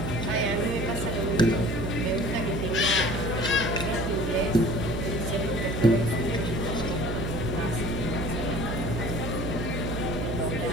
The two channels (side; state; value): right; noise; hum, 3 dB below the sound